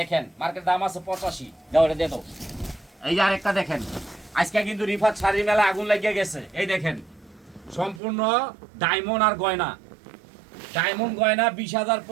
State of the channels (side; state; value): left; drops out; at 8.0 s